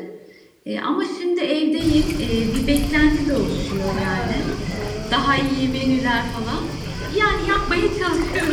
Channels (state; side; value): identical; both; correlation 1.00